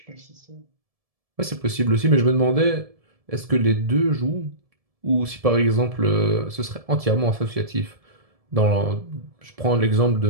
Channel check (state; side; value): late; left; 1.7 ms